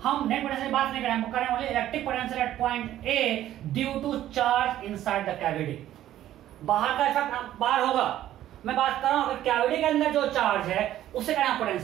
हम नेट पोटेंशियल की बात नहीं करें, हम करें only electric potential at point A due to charge inside the cavity. बाहर का इफेक्ट बाहर होगा, मैं बात कर रहा हूं अगर कैविटी के अंदर जो चार्ज है उससे कहना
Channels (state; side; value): quieter; left; 12.8 dB